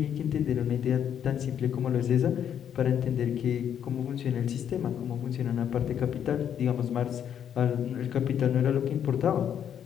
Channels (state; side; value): quieter; right; 9.1 dB